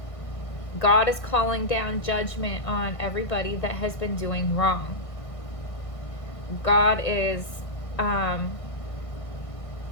God is calling down judgment on everybody that has been doing wrong. God is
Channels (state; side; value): late; right; 1.6 ms